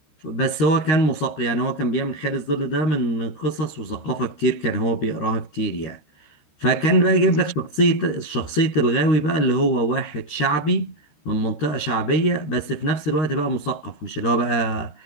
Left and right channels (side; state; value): right; late; 13 ms